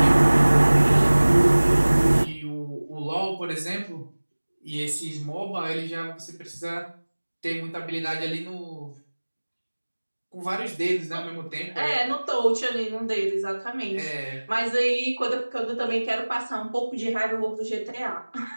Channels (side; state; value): both; inverted; correlation -1.00